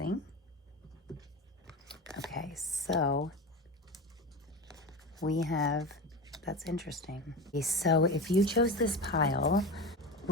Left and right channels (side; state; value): both; normal; correlation 0.25